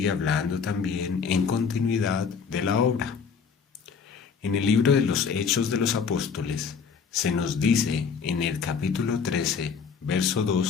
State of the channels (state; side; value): quieter; right; 6.0 dB